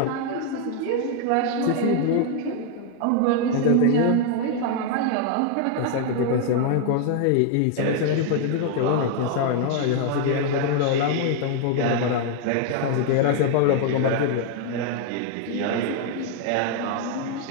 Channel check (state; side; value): different; both; correlation 0.00